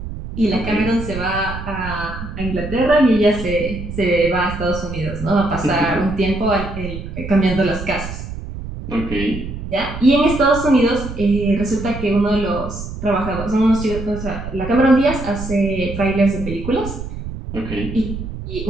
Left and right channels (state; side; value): noise; right; rumble, 8 dB below the sound